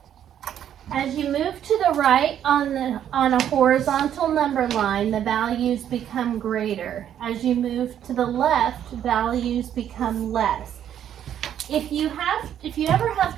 As you move to the right on a horizontal number line, the values become greater. As you move to the left, values become less. If you ever have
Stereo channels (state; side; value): quieter; left; 10.1 dB